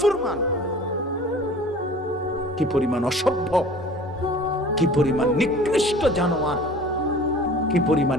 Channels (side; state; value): both; normal; correlation 0.45